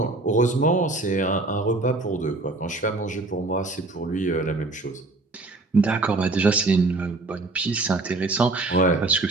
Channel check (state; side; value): quieter; left; 3.2 dB